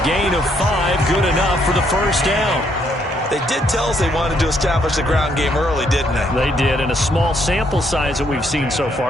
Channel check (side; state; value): both; normal; correlation 0.72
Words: gain of 5, good enough for the first down. They did tell us they wanted to establish the ground game early, didn't they? They did, in a small sample size that we've seen so